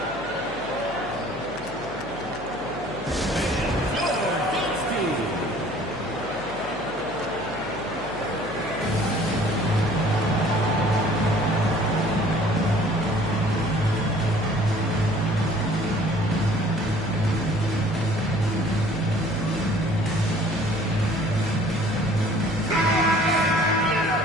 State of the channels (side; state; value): left; noise; hum, 17 dB below the sound